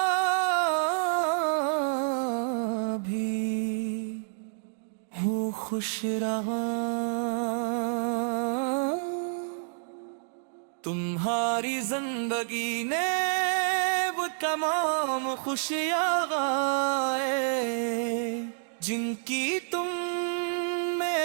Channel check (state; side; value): silent; left; digital silence